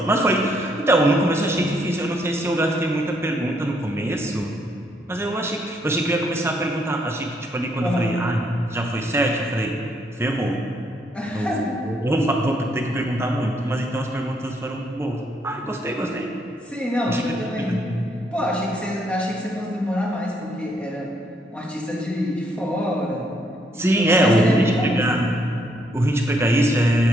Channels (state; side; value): normal; both; correlation 0.72